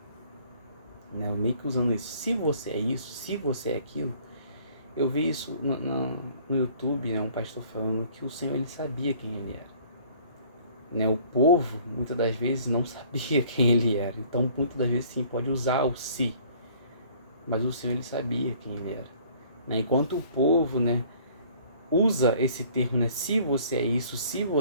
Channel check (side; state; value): both; inverted; correlation -0.55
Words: né? Meio que usando isso, se você é isso, se você é aquilo. Eu vi isso no YouTube, né? Um pastor falando que o Senhor, ele sabia quem ele era. Né? O povo, muitas das vezes, não sabia quem ele era. Então, muitas das vezes, sim, pode usar o se. Mas o Senhor, ele sabia quem ele era. Né? Enquanto o povo, né, usa esse termo, né, se você é isso, se